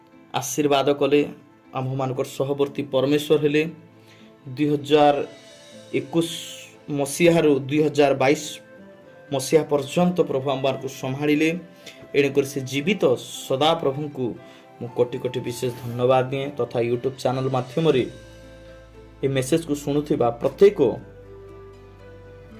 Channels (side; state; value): both; identical; correlation 1.00